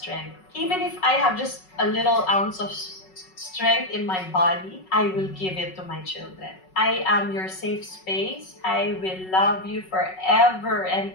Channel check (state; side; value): late; right; 5.4 ms